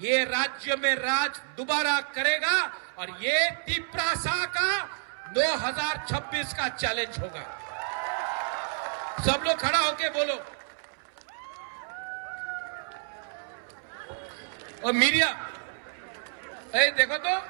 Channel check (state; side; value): silent; left; 58 dB below the other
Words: राज्य में राज दोबारा करेगा और ये तिपरासा का 2026 का चैलेंज होगा। सब लोग खड़ा होके बोलो। और मीडिया, देखो तो,